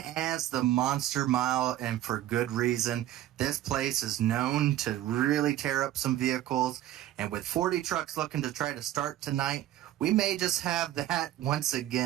as the Monster Mile, and for good reason. This place is known to really tear up some vehicles, and with 40 trucks looking to try to start tonight, we may just have that once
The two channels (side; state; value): left; quieter; 13.2 dB